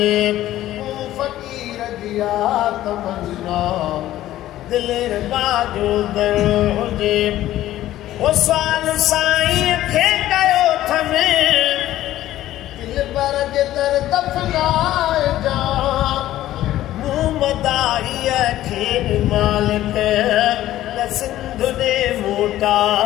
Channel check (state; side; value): quieter; right; 14.0 dB